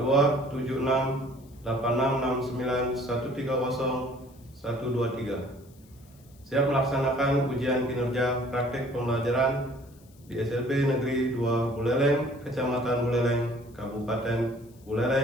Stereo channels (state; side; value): noise; left; hiss, 29 dB below the sound